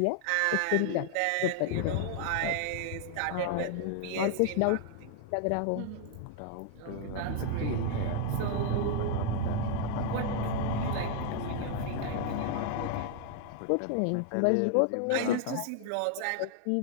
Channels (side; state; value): both; different; correlation 0.00